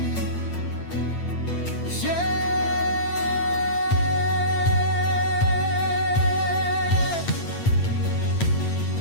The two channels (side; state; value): right; late; 8.7 ms